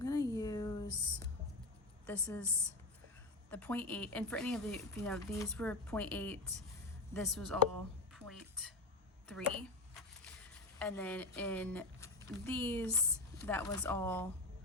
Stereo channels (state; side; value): quieter; right; 3.1 dB